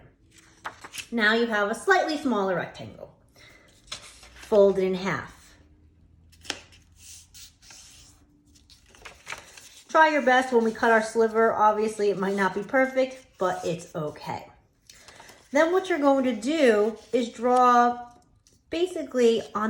Now you have a slightly smaller rectangle. Fold it in half. Try your best when we cut our sliver. Obviously, it might not be perfect, but it's okay. Then what you're going to do is draw basically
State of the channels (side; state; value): both; identical; correlation 1.00